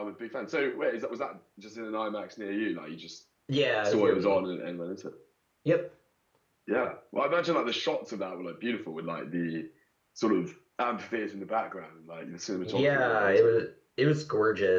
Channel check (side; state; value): both; identical; correlation 1.00